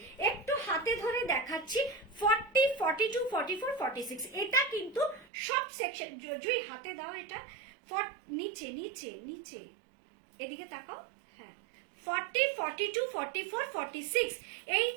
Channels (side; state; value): left; drops out; at 5.2 s